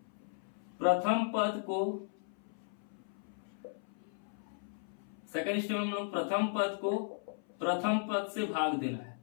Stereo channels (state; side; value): silent; right; 54 dB below the other